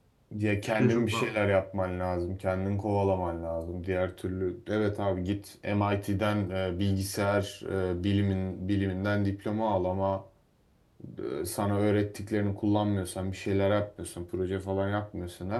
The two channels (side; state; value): both; identical; correlation 1.00